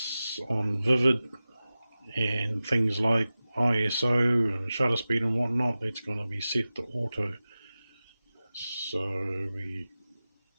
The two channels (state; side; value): inverted; both; correlation -0.96